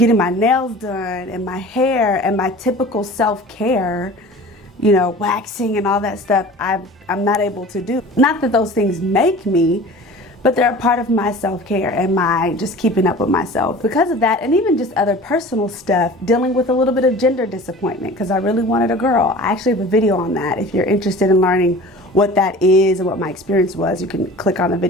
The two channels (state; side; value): normal; both; correlation 0.41